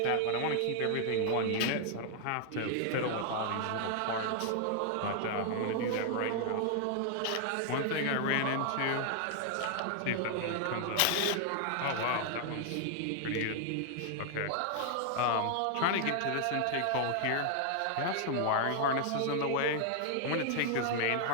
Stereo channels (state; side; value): different; both; correlation 0.00